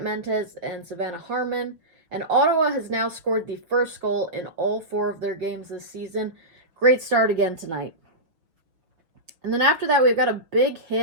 Mentes and Savannah Harmon, and Ottawa has now scored the first goal in all 4 of their games this season. Great start again tonight. And then after that, we've got a big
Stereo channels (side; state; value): left; late; 6.1 ms